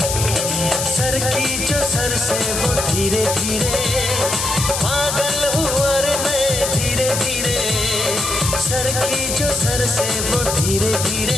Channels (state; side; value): noise; left; hiss, 2 dB below the sound